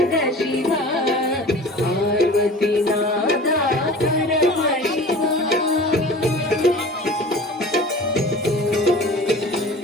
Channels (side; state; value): both; normal; correlation 0.40